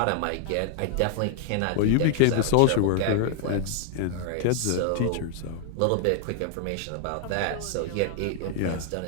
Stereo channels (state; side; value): different; both; correlation 0.00